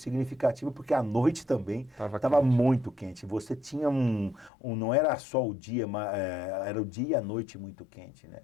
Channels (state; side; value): drops out; right; at 4.5 s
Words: porque à noite também estava muito quente. Você tinha não era só o dia, mas era o dia e a noite muito quente, né?